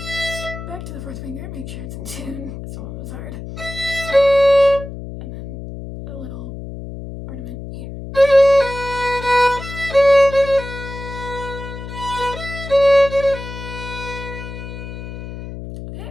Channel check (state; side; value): noise; left; hum, 10 dB below the sound